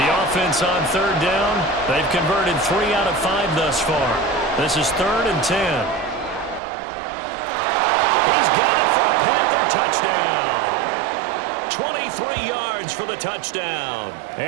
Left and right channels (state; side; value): drops out; left; at 6.6 s